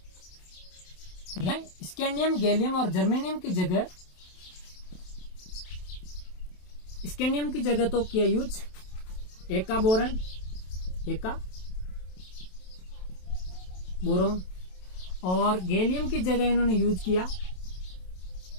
स्कैंडियम, गैलियम और जर्मेनियम की जगह, स्कैंडियम की जगह तो किया यूज एका बोरोन, और गैलियम की जगह इन्होंने यूज किया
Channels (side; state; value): right; late; 27 ms